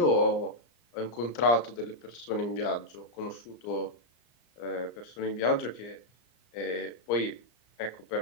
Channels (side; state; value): right; late; 34 ms